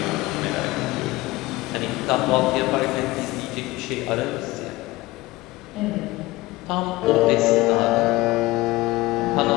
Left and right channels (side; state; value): right; quieter; 19.7 dB